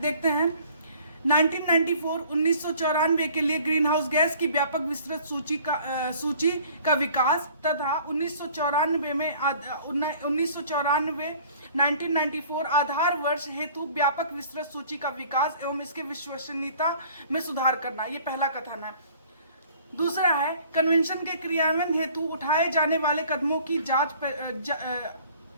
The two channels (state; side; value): inverted; both; correlation -0.52